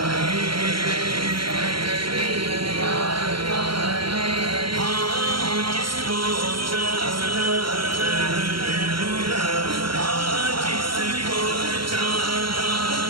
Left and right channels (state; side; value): late; left; 0.73 ms